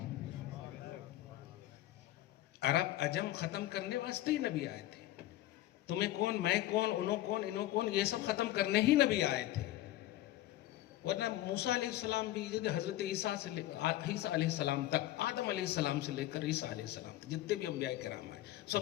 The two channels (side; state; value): right; quieter; 14.8 dB